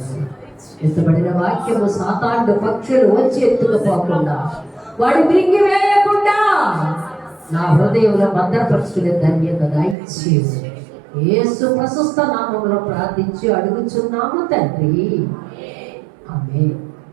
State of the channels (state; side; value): drops out; left; at 10.0 s